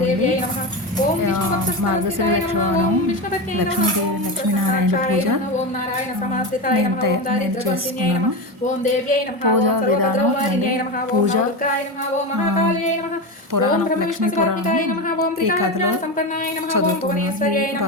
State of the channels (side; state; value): both; normal; correlation 0.18